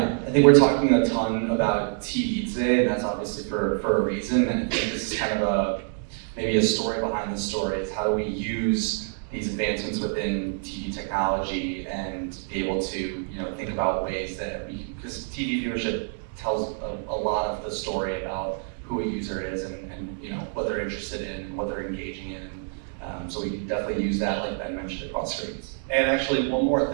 I think we're talking a ton about TV today, and that's obviously for a reason. And I think this is kind of maybe a story behind the story. Is how do we use these advancements within TV technology and be able to think about ways that because TV viewership tells a lot of the story about who a user is and what they're interested in, what they're engaging in. So we can definitely use that, like Ben mentioned, across screens. And actually, one more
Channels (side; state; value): left; silent; 59 dB below the other